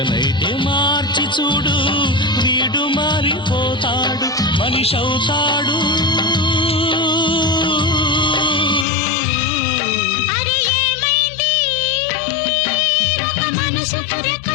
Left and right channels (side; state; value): right; drops out; at 8.8 s